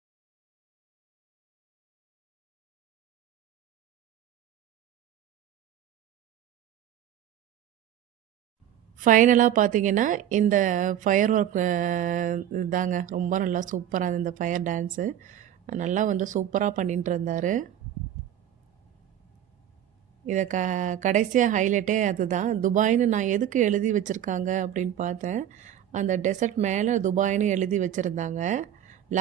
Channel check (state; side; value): quieter; left; 10.8 dB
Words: ஃபைனலாக பார்த்தீங்கன்னா, இந்த ஃபயர் ஒர்க் இதாங்க ரொம்ப நல்லா சூப்பராக இருந்தது. இந்த ஃபயர் டான்ஸு நல்லா வந்து சூப்பராக பண்ணிட்டு இருந்தார். இதை கடைசியாக ஹைலைட்டே அதுதான். துபாய்னு நான் எதுக்கு எழுதி வச்சுருக்காங்க அப்படின்னு பார்த்தேன். அந்த டெசர்ட் மேலே துபாய்னு எழுதி வச்சுருந்தாங்க.